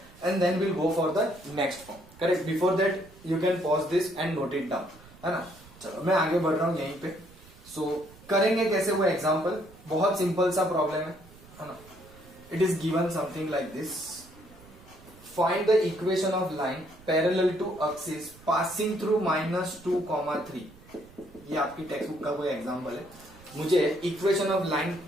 and then we'll go for the next form. Correct? Before that you can pause this and note it down, है ना। चलो मैं आगे बढ़ रहा हूं यहीं पे। So करेंगे कैसे वो एग्जाम्पल, बहुत सिंपल सा प्रॉब्लम है ना। It is given something like this. Find the equation of line parallel to axis passing through -2, 3। ये आपकी टेक्स्ट बुक का कोई एग्जाम्पल है। मुझे इक्वेशन ऑफ लाइन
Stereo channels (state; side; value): noise; right; rumble, 22 dB below the sound